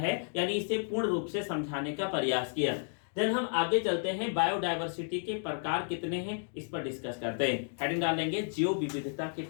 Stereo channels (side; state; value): right; silent; digital silence